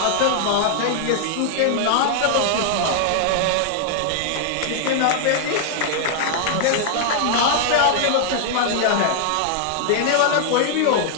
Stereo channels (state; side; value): different; both; correlation -0.01